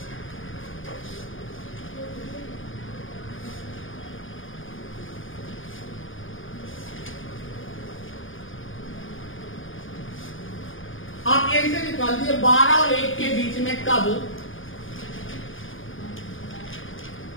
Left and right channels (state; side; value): late; right; 0.58 ms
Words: आप यही से निकाल दिए 12 और 1 के बीच में कब